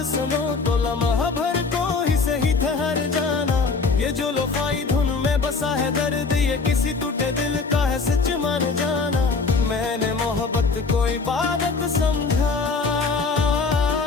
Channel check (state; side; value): quieter; right; 4.4 dB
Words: सुनो तो लम्हा भर को ही सही ठहर जाना। ये जो लोफाई धुन में बसा है दर्द, ये किसी टूटे दिल का है सच मान जाना। मैंने मोहब्बत को इबादत समझा,